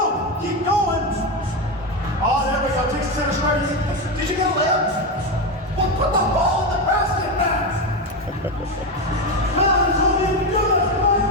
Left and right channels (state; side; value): normal; both; correlation 0.13